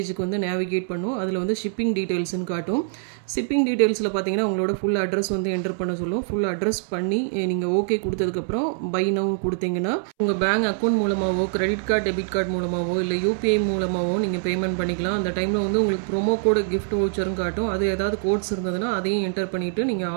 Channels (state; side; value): silent; left; 63 dB below the other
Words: வந்து நேவிகேட் பண்ணும். அதில் வந்து ஷிப்பிங் டீட்டெயில்ஸ்னு காட்டும். ஷிப்பிங் டீட்டெயில்ஸில் பார்த்தீங்கன்னா உங்களோட ஃபுல் அட்ரஸ் வந்து என்டர் பண்ண சொல்லும். ஃபுல் அட்ரஸ் பண்ணி நீங்கள் ஓகே கொடுத்ததுக்கப்புறம் பை நவ் கொடுத்தீங்கன்னா உங்கள் பேங்க் அக்கௌண்ட் மூலமாகவோ கிரெடிட் கார்டு டெபிட் கார்டு மூலமாகவோ இல்லை UPI மூலமாகவோ நீங்கள் பேமெண்ட் பண்ணிக்கலாம். அந்த டைமில் வந்து உங்களுக்கு ப்ரோமோ கோடு கிஃப்ட் வவுச்சரும் காட்டும். அது ஏதாவது கோட்ஸ் இருந்ததுன்னா அதையும் என்டர் பண்ணிவிட்டு நீங்கள்